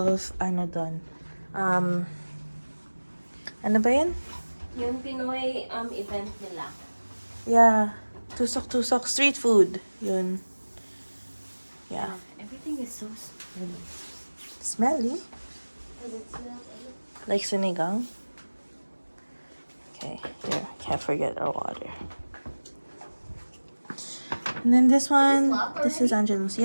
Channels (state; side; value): inverted; both; correlation -1.00